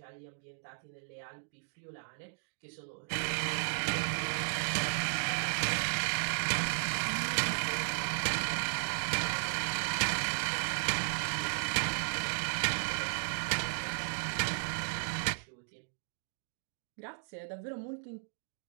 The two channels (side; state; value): left; silent; digital silence